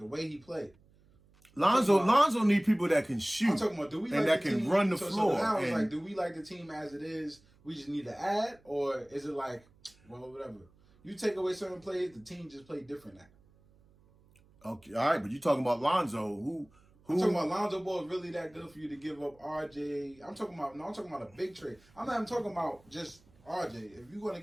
way he play. Lonzo need people that can shoot. I'm talking about, do we and like that the can team, run the so floor. Now it's and, like, do we like the team as it is? We just need to add, or is it like, well, whatever. You take away certain plays, the team just play different now. Okay, all right, but you talking about Lonzo, who I'm talking about Lonzo Ball is really that good for you to give up RJ. I'm talking about a big trade. I'm not even talking about just RJ. If you want to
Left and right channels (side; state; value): right; noise; hum, 29 dB below the sound